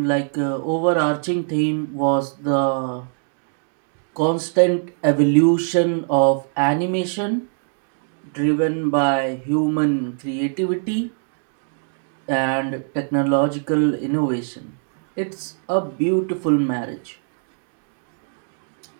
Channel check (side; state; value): left; silent; 64 dB below the other